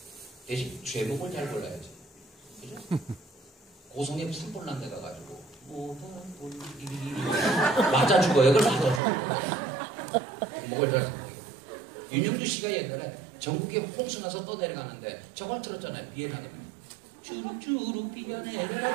대신 제목을 잘 골라야지. 그죠? 고성에 산불난 데 가가지고 뭐가 맞아 죽어요. 그걸 맞아 죽어요. 목을 잘 윤영주 씨가 옛날에 전국에 홍수 나서 떠내려가는데 저걸 들었잖아요. 비엔나게 주룩주룩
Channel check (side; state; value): left; drops out; at 9.0 s